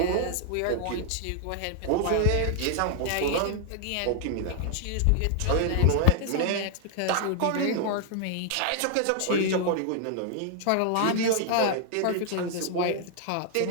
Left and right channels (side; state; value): both; different; correlation 0.00